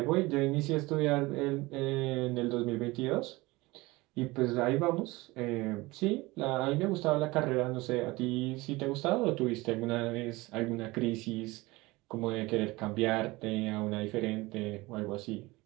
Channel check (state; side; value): quieter; left; 21.6 dB